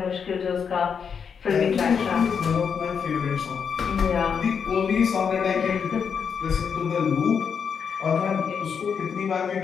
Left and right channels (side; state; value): right; quieter; 6.7 dB